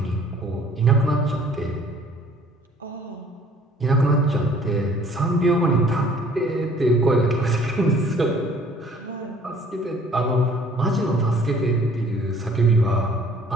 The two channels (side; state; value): both; normal; correlation 0.55